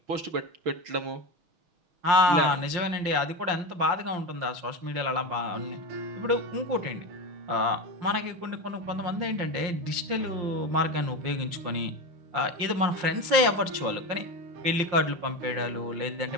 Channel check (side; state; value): left; late; 5.7 ms